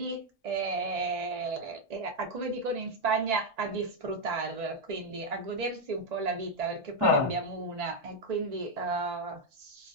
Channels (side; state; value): both; normal; correlation 0.01